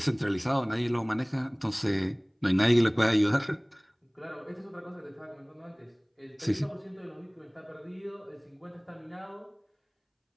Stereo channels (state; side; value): identical; both; correlation 1.00